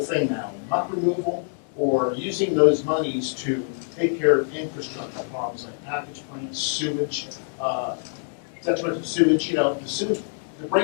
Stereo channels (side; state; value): right; silent; digital silence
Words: now, muck removal or using those monies to take care of infrastructure problems like package plants, sewage, detrimental sewage, the sewage, the